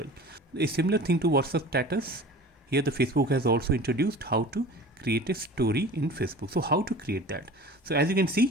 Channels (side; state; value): both; normal; correlation 0.40